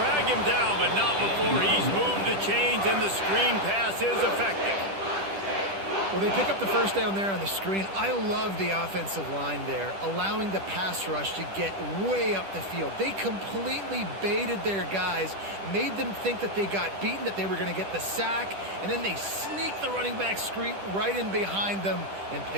him down, but not before he's moved the chains, and the screen pass is effective. Well, they pick up the 1st down there on the screen. I love the offensive line there, allowing the pass rush to get way up the field. They completely baited their guys, made them think that they got beaten, that they were going to get the sack, and then they sneak the running back screen right in behind them and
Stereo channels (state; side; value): late; left; 10 ms